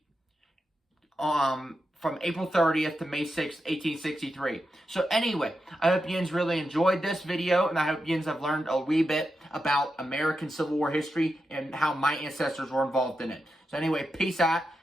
from April 30th to May 6th, 1863. So anyway, I hope yins really enjoyed this video, and I hope yins have learned a wee bit about American Civil War history and how my ancestors were involved in it. So anyway, peace out.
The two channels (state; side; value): normal; both; correlation 0.88